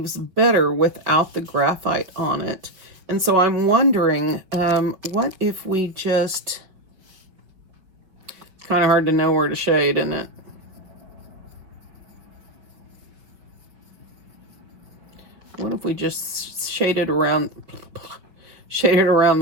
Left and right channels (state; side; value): late; left; 5.3 ms